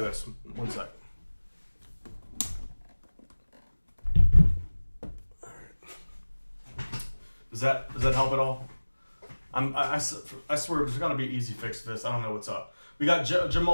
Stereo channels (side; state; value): both; inverted; correlation -1.00